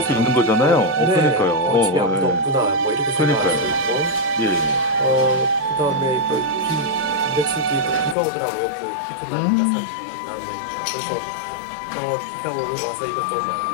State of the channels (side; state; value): right; drops out; at 8.2 s